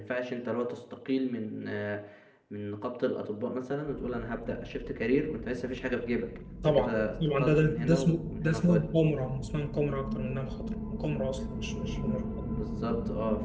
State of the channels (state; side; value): identical; both; correlation 1.00